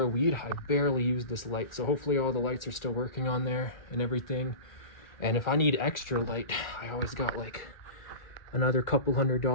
weed, I barely used this light. So hopefully all the lights are still working on there and everything. And if I need extra light, I always got like another couple $100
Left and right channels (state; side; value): late; right; 1.1 ms